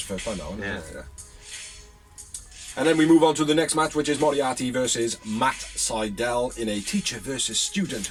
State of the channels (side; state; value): both; identical; correlation 1.00